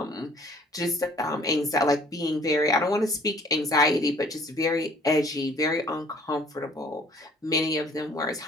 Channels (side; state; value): both; normal; correlation 0.57